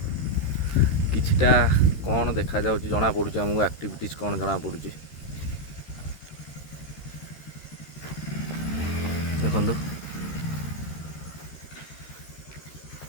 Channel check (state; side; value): late; right; 13 ms